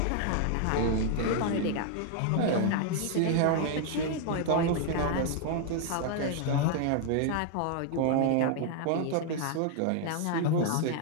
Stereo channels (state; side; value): different; both; correlation 0.00